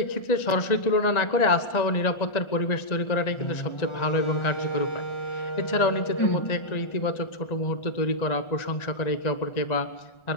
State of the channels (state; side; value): late; right; 1.4 ms